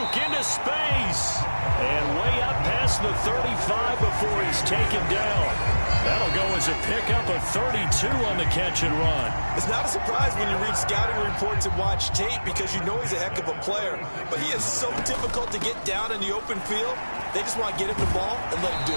into space. And way up past the 35 before he's taken down. That'll go as a pickup of 32 on the catch and run. It's not a surprise when you read scouting reports and watch tape, because you know he's a heck of a player. But he is so difficult to get down in the open field. They just want to get him the ball and let him do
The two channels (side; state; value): both; inverted; correlation -1.00